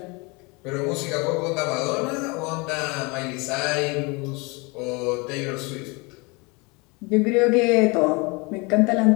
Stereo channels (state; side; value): quieter; right; 27.8 dB